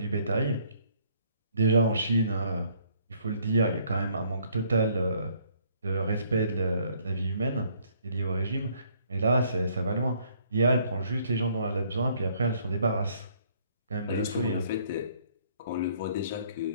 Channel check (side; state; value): both; inverted; correlation -0.64